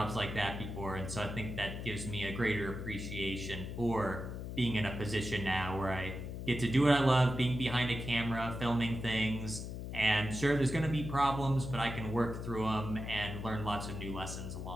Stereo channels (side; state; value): left; noise; hum, 7 dB below the sound